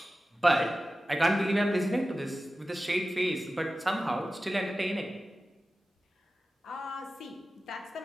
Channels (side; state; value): both; normal; correlation 0.94